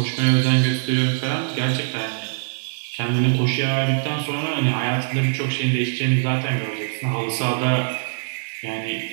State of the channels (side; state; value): left; silent; digital silence